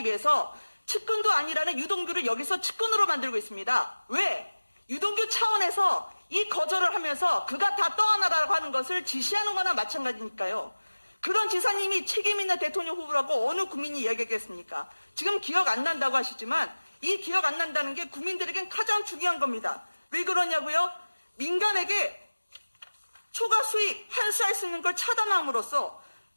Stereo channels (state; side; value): inverted; both; correlation -1.00